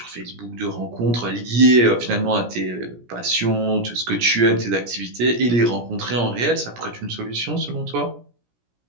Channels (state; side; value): late; left; 17 ms